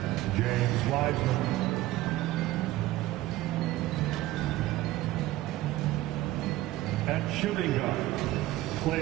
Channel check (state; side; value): quieter; left; 16.5 dB